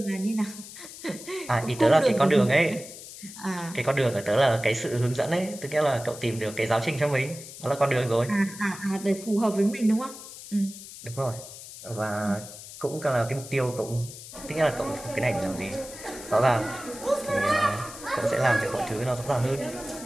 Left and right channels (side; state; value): left; noise; hiss, 14 dB below the sound